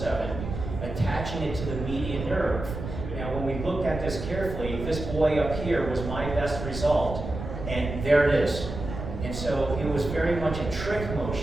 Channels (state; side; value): noise; right; rumble, 7 dB below the sound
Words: attaching it to the median nerve. Now, when we looked at this carefully, this boy up here was my best result, and there it is. And so it was very much a trick